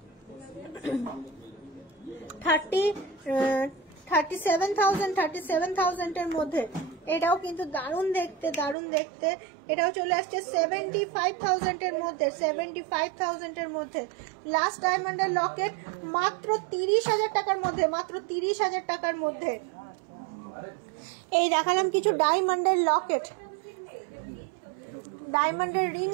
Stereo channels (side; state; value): left; drops out; at 8.8 s